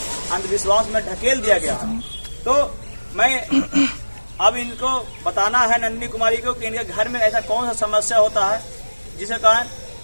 अंधविश्वास में ढकेल दिया गया है। तो मैं अब इनको बताना है नंदिनी कुमारी को कि इनके घर में ऐसा कौन सा समस्या होता है जिसके कारण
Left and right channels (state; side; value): inverted; both; correlation -1.00